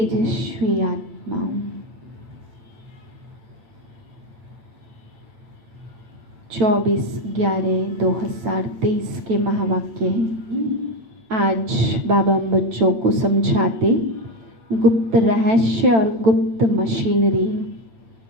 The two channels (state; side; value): late; left; 9.0 ms